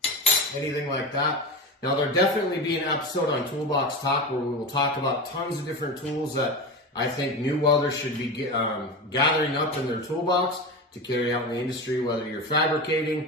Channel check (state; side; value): normal; both; correlation 0.24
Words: anything like that. Now there'll definitely be an episode on Toolbox Talk where we will talk about tons of different tools that I think new welders should be gathering up in their toolbox to carry out in the industry, whether you're